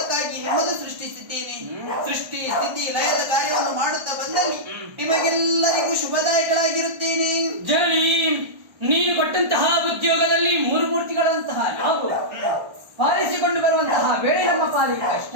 ನಿಮ್ಮನ್ನು ಸೃಷ್ಟಿಸಿದ್ದೇನೆ. ಸೃಷ್ಟಿ ಸ್ಥಿತಿ ಲಯದ ಕಾರ್ಯವನ್ನು ಮಾಡುತ್ತಾ ಬಂದಲ್ಲಿ ನಿಮಗೆಲ್ಲರಿಗೂ ಶುಭದಾಯಕಳಾಗಿರುತ್ತೇನೆ. ಜನನಿ, ನೀನು ಕೊಟ್ಟಂತಹ ಉದ್ಯೋಗದಲ್ಲಿ ಮೂರು ಮೂರ್ತಿಗಳಂತಹ ನಾವು ಪಾಲಿಸಿಕೊಂಡು ಬರುವಂತಹ ವೇಳೆ ನಮ್ಮ ಪಾಲಿಗೆ ಕಷ್ಟ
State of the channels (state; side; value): late; left; 1.3 ms